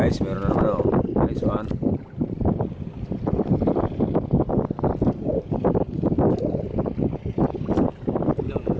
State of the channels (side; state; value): both; identical; correlation 1.00